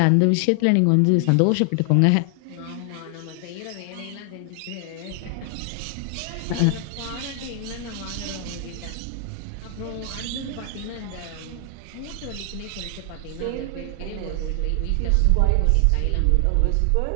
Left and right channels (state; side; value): different; both; correlation 0.00